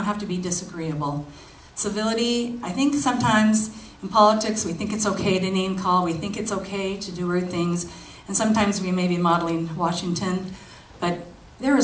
have to be disagreeable. Civility, I think sometimes in politics we think it's okay to name call, we think it's okay to do rude things, and sometimes we may be modeling Washington, but there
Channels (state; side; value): identical; both; correlation 1.00